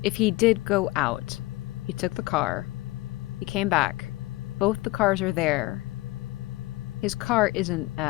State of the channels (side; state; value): right; quieter; 19.8 dB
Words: if he did go out, he took the car, he came back, both the cars are there. His car isn't